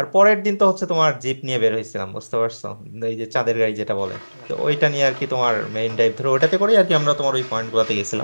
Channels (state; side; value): inverted; both; correlation -1.00